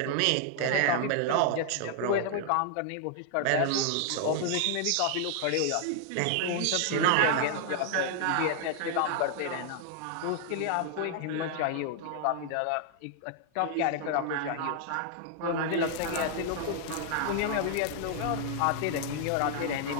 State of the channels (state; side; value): different; both; correlation 0.00